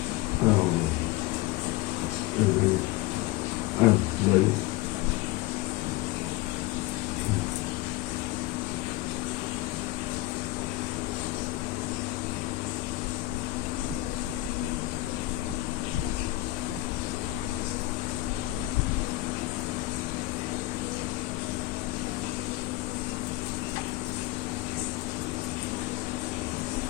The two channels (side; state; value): right; quieter; 18.6 dB